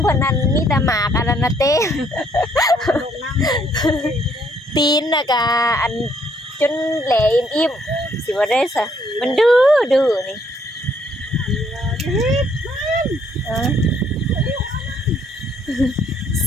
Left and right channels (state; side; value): normal; both; correlation 0.67